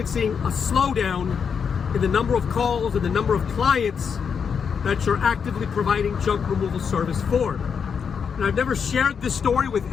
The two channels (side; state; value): right; quieter; 6.6 dB